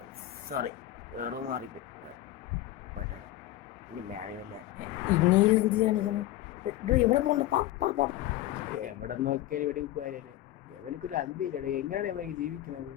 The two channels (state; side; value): quieter; right; 14.8 dB